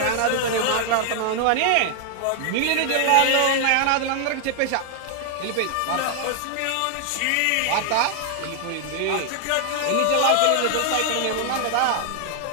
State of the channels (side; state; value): both; different; correlation 0.00